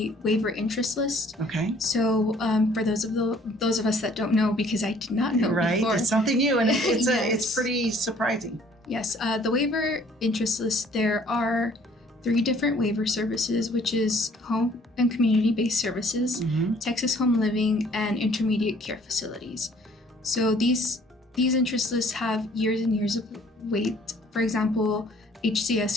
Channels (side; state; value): both; normal; correlation 0.58